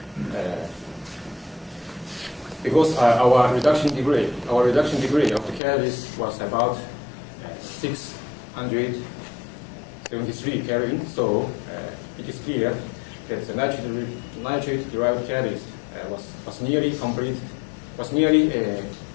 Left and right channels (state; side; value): drops out; right; at 5.6 s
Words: Because our reduction degree of the catalyst was about 673 Kelvin, so it is clear that the nitrate derived catalyst was nearly